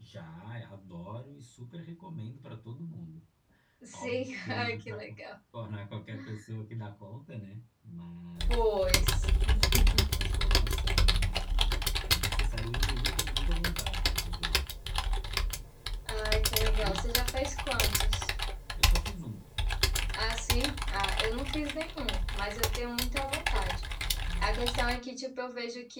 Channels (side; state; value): both; identical; correlation 1.00